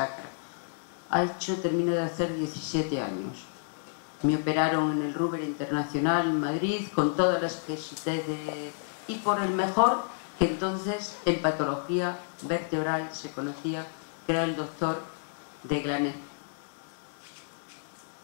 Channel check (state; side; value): silent; right; 58 dB below the other